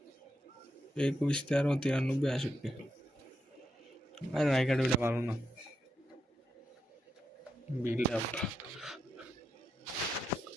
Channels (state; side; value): normal; both; correlation 0.83